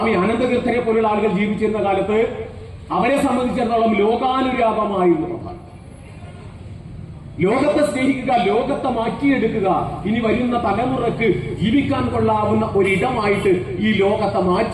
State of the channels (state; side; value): identical; both; correlation 1.00